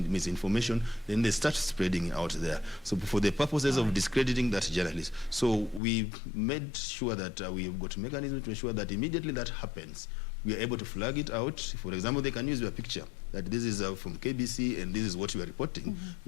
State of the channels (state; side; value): drops out; right; at 5.8 s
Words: then they start spreading it out there. So for the purposes of discrediting that journalist. So we've made sure that we've got mechanisms to ensure that immediately that happens, we are able to flag it out. For example, they can use your picture, that this is from KBC and this is what you are reporting.